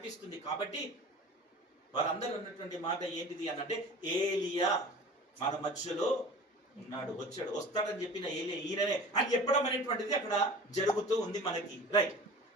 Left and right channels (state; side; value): normal; both; correlation 0.40